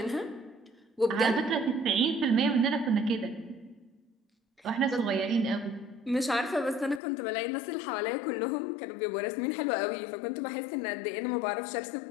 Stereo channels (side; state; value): right; drops out; at 7.0 s